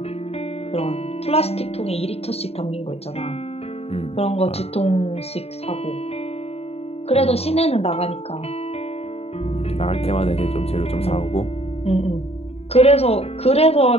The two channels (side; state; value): right; late; 0.29 ms